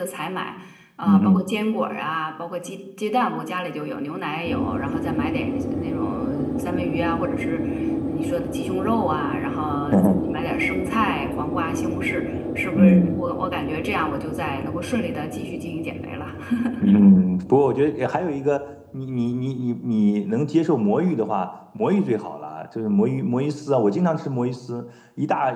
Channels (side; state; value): both; identical; correlation 1.00